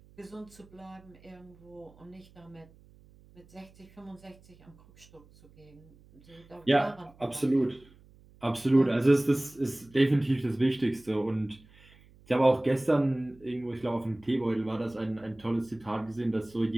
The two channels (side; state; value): right; noise; hum, 26 dB below the sound